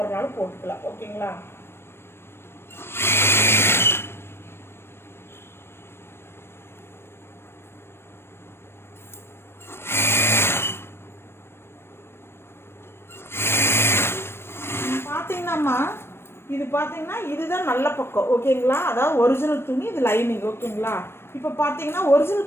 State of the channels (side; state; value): right; late; 0.12 ms